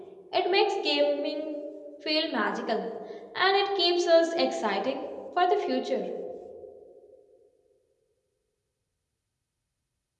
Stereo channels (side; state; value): both; identical; correlation 1.00